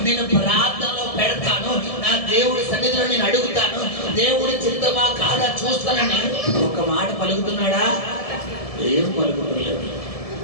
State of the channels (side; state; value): right; late; 1.7 ms